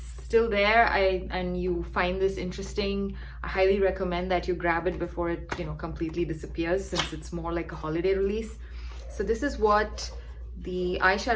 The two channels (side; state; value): both; identical; correlation 1.00